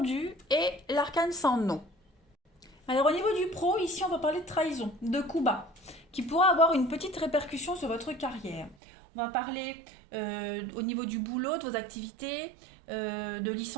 et l'arcane sans nom. Alors, au niveau du pro, ici, on va parler de trahison, de coup bas, qui pourra avoir une petite répercussion sur votre carrière. On va parler au niveau du boulot, de vos activités, de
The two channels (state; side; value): drops out; left; at 8.8 s